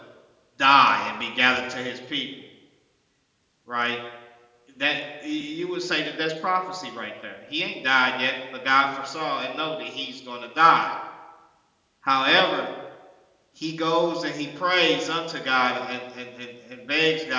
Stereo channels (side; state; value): both; identical; correlation 1.00